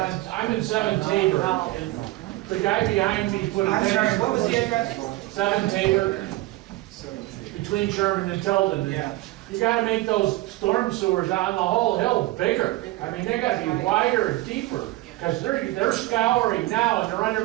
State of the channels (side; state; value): left; quieter; 18.7 dB